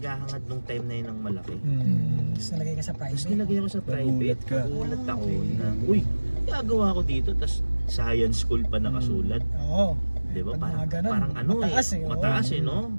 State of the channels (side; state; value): both; inverted; correlation -1.00